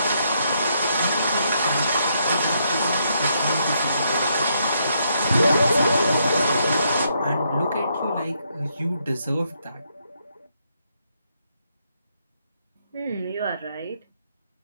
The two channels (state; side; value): inverted; both; correlation -0.75